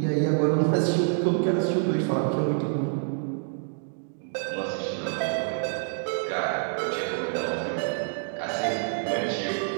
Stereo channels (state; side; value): silent; left; 60 dB below the other